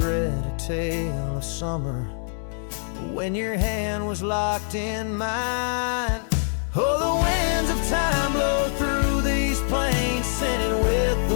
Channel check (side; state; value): right; silent; 62 dB below the other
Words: a tale of summer when your hand was locked in mine. Oh, the winds of time blow through these plains, scented with